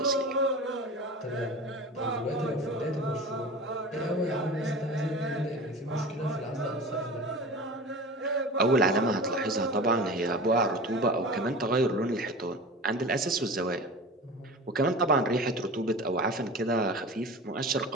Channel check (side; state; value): both; normal; correlation 0.34